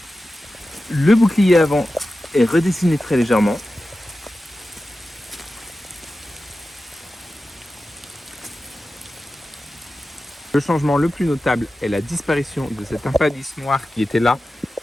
Le bouclier avant est redessiné très légèrement. Le changement le plus notable est la disparition de cet impadis noir qui était là,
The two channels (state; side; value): normal; both; correlation 0.93